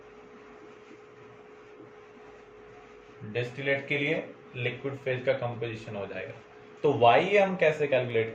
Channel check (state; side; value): identical; both; correlation 1.00